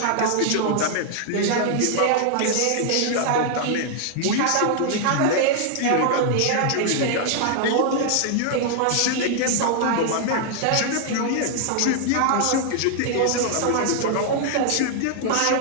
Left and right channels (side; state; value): both; different; correlation 0.00